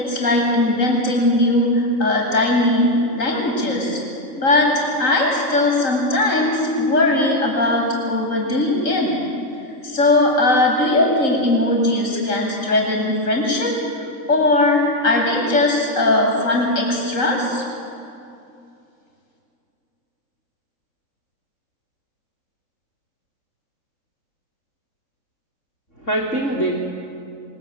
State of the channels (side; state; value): right; late; 3.8 ms